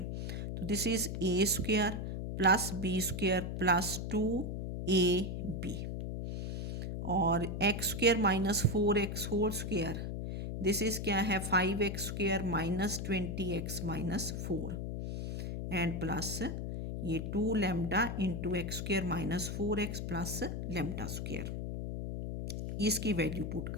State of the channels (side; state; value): left; noise; hum, 4 dB below the sound